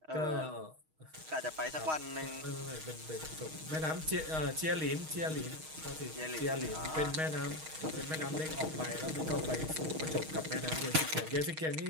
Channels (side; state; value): left; late; 6.4 ms